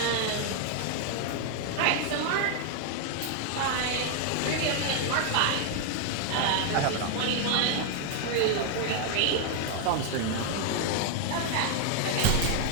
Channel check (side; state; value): both; different; correlation 0.00